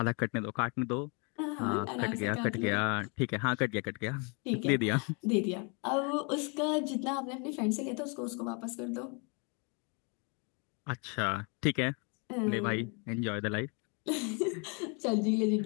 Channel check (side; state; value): right; quieter; 34.1 dB